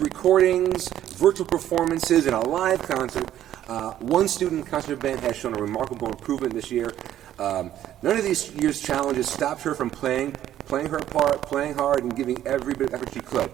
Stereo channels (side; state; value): left; quieter; 11.9 dB